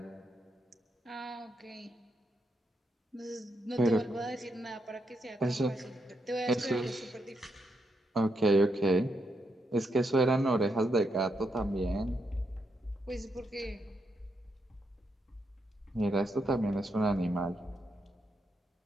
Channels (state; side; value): normal; both; correlation 0.81